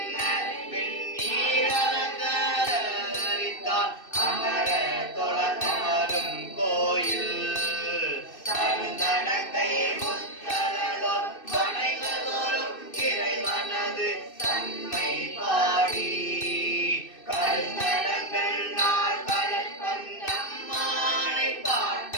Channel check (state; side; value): late; right; 2.6 ms